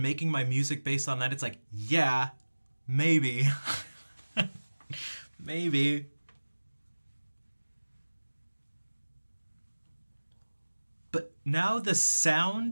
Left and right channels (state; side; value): inverted; both; correlation -1.00